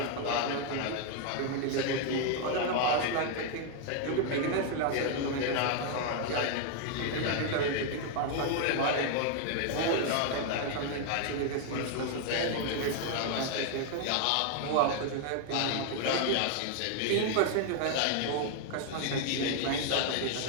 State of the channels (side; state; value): both; different; correlation 0.00